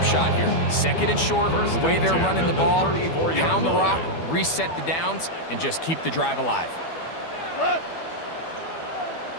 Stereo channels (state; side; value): late; right; 12 ms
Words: shot here. 2nd and short, the way they're running the ball, pound the rock, reset the downs, and just keep the drive alive.